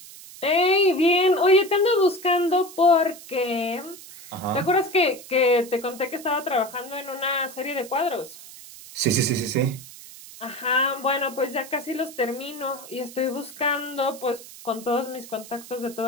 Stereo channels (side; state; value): right; noise; hiss, 17 dB below the sound